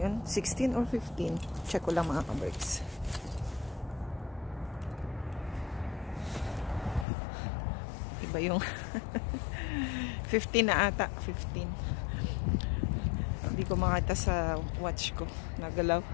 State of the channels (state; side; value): drops out; right; at 7.1 s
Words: 16 or 15? Check ko lang mga kaberks. Iba yung 15 na ata. 15. Hindi ko makita sa watch ko. Nagalaw.